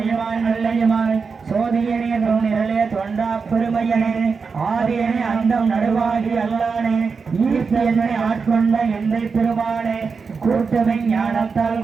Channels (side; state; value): left; quieter; 5.1 dB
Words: நல்லையுமாய் சோதியனே தொன்னிரலே தொண்டா பெருமையனே ஆதியனே அந்தம் நடுவாகி அல்லானே ஈர்த்தியனை ஆட்கொண்ட எந்தை பெருமானே கூட்டமை ஞானத்தால்